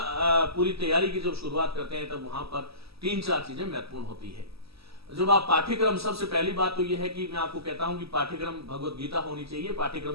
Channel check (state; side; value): late; left; 0.77 ms